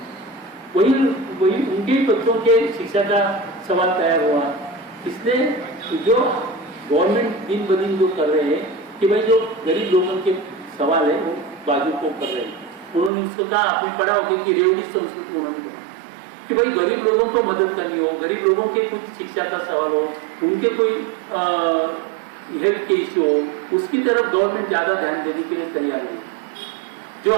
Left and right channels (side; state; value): left; drops out; at 13.1 s